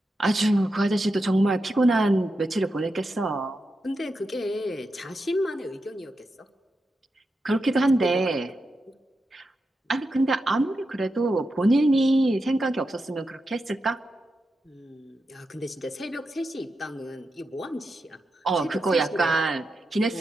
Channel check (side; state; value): both; normal; correlation 0.88